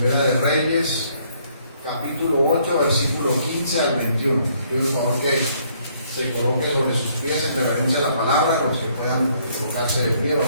de Reyes, capítulo 8, versículo 15 al 21. Pido por favor que se coloque sobre sus pies en reverencia a la palabra. Los que puedan colocarse de pie,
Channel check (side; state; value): both; inverted; correlation -0.67